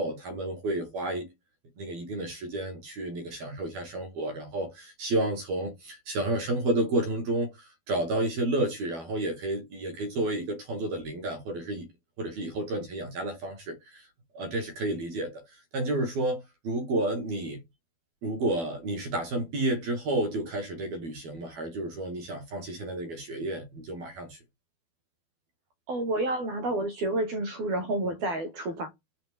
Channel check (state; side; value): late; left; 12 ms